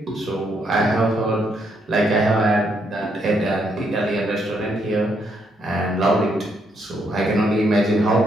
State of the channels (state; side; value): normal; both; correlation 0.75